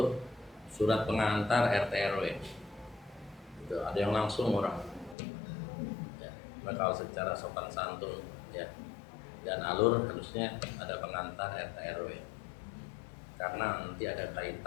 surat pengantar RT RW. Gitu. Ada yang langsung orang. Ya, nah kalau secara sopan santun ya dan alur harusnya ada pengantar RT RW. Karena nanti ada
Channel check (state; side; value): drops out; right; at 5.2 s